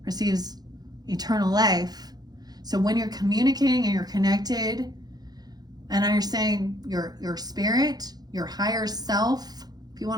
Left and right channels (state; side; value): late; left; 0.19 ms